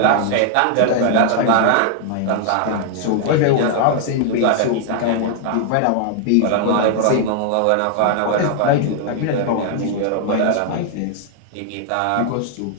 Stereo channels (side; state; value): both; different; correlation 0.00